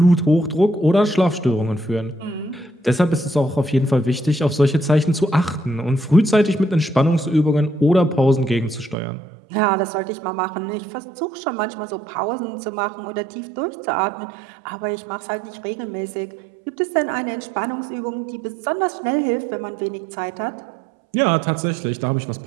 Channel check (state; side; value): drops out; left; at 9.0 s